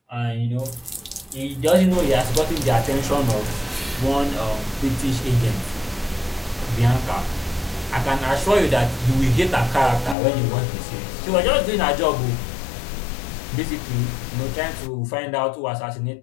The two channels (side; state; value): right; drops out; at 10.2 s